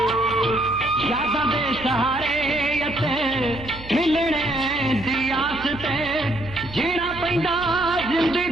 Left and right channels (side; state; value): right; noise; hum, 15 dB below the sound